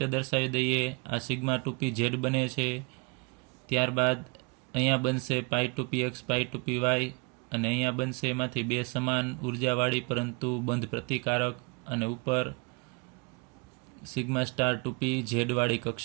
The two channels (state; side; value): quieter; left; 29.1 dB